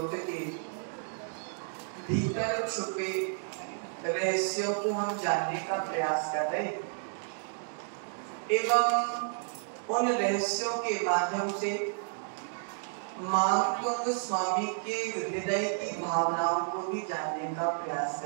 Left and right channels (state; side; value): silent; left; digital silence